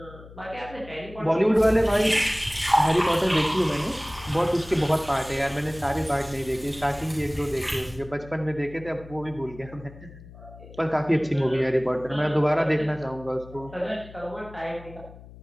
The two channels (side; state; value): left; noise; hum, 18 dB below the sound